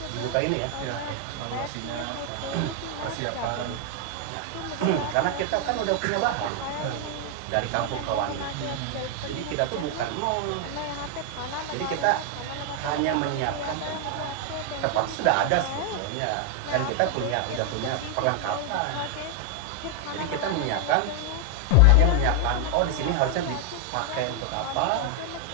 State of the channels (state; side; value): different; both; correlation 0.01